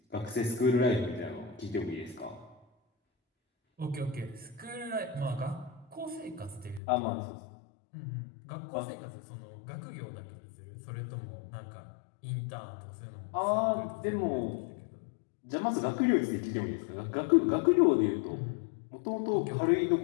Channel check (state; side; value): drops out; right; at 6.8 s